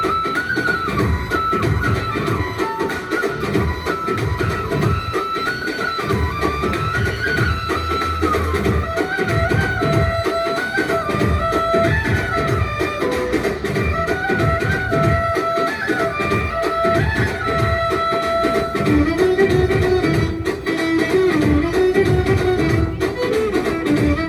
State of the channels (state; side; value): identical; both; correlation 1.00